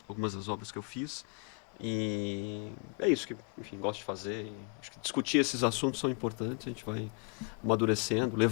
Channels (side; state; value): right; quieter; 37.7 dB